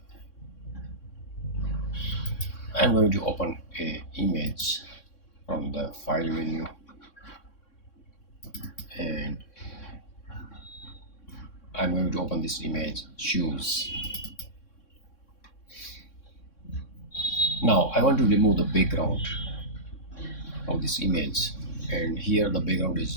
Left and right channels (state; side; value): late; right; 3.6 ms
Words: I'm going to open a image from the file menu and I'm going to open this image, shoes. Now I want to remove the background of this image, and here the background